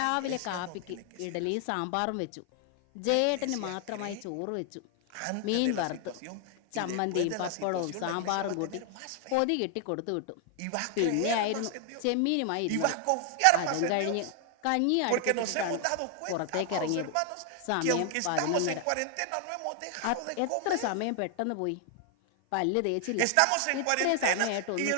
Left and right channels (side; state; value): both; different; correlation 0.00